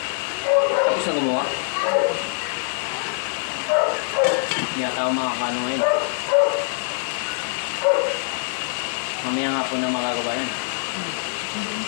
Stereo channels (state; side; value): silent; right; digital silence